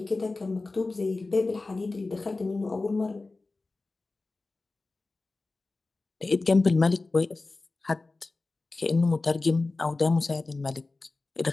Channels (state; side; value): quieter; right; 3.4 dB